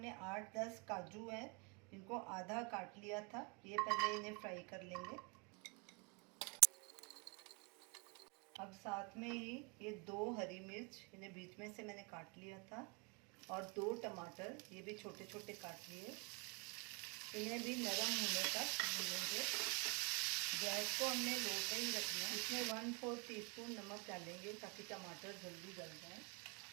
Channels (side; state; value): left; quieter; 31.4 dB